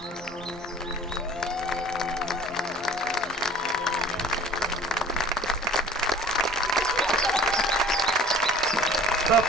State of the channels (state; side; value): normal; both; correlation 0.46